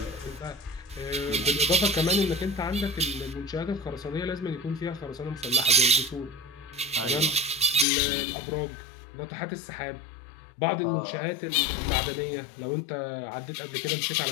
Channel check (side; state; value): right; drops out; at 7.9 s